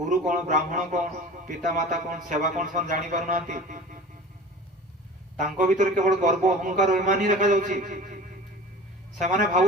कौन, ब्राह्मण कौन, पिता माता कौन, सेवा कौन सन जानी पार नांती। तांको भीतर केवल गर्व अहंकार अभिमान ही देखा जाउछि। सेमाने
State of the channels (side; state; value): both; normal; correlation 0.39